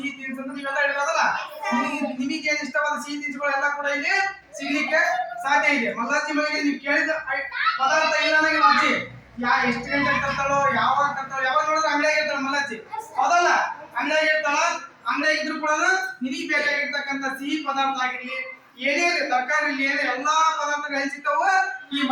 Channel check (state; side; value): identical; both; correlation 1.00